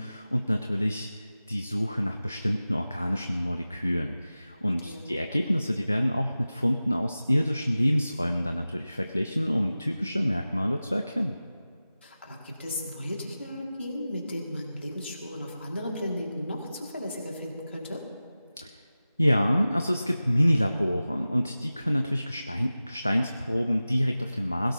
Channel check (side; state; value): both; inverted; correlation -0.96